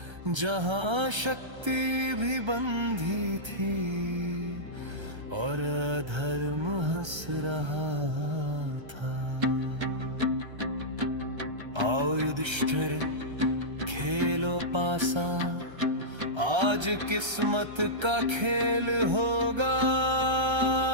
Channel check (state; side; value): late; left; 1.3 ms